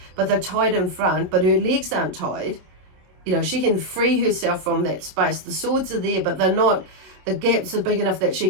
but they're tied in front, but her legs aren't tied. She can free herself from that space. The swords are there, but they're not, the gaps are big enough that she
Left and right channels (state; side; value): late; left; 27 ms